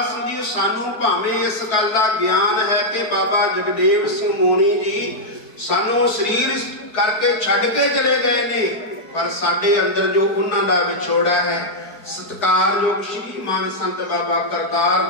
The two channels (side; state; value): right; late; 4.7 ms